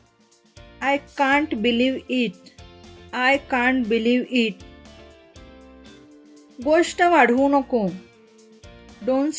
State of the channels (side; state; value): both; identical; correlation 1.00